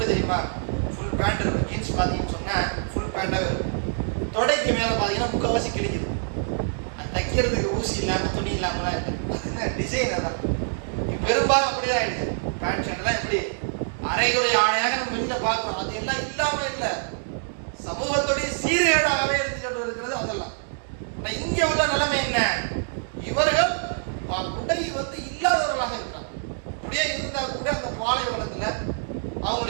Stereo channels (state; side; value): silent; left; digital silence